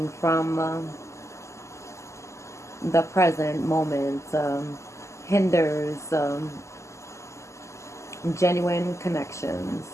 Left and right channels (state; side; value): late; right; 0.14 ms